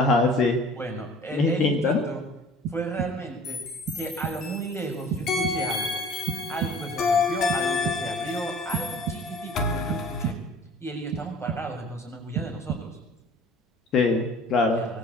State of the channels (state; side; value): normal; both; correlation 0.47